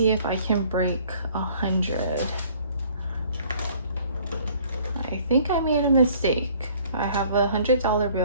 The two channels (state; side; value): inverted; both; correlation -0.56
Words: if I can break 100. I think I made a mistake. I have a $100